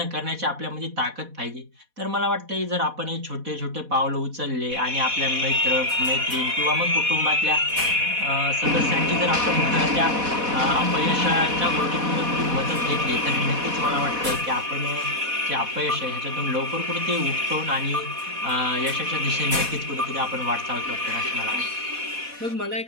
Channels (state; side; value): late; left; 4.1 ms